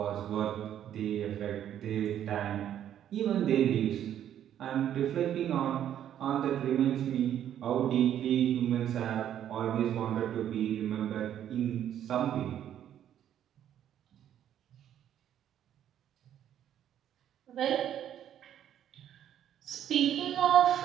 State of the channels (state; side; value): quieter; left; 10.5 dB